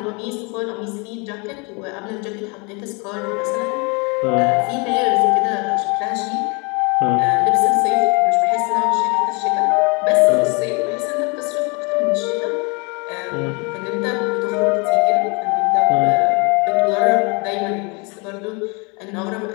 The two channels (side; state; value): right; quieter; 30.8 dB